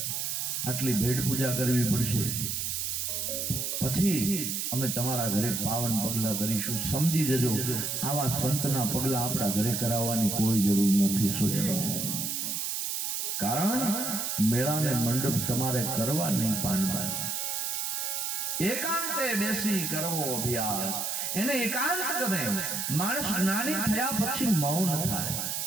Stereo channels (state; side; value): noise; right; hiss, 1 dB below the sound